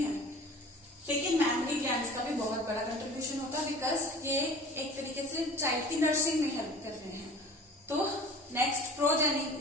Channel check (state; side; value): normal; both; correlation 0.42